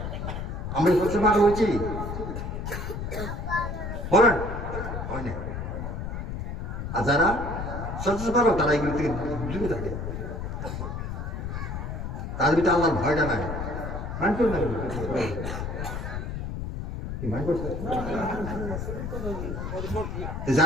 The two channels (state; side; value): noise; left; rumble, 5 dB below the sound